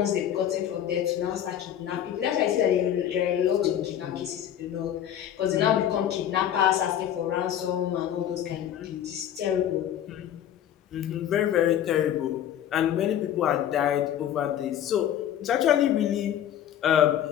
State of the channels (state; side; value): quieter; right; 10.5 dB